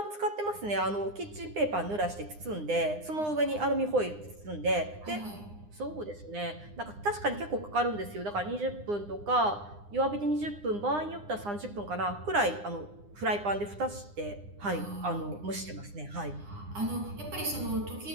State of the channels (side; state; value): left; late; 9.8 ms